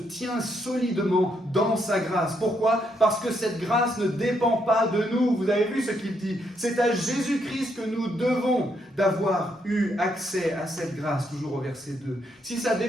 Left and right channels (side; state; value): both; normal; correlation 0.76